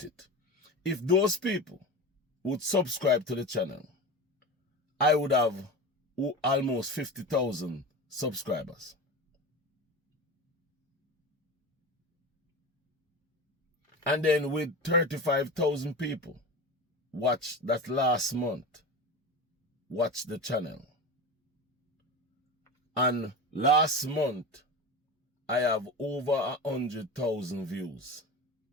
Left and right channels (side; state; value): both; normal; correlation 0.27